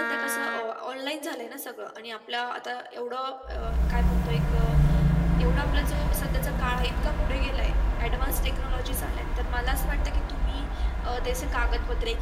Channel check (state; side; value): identical; both; correlation 1.00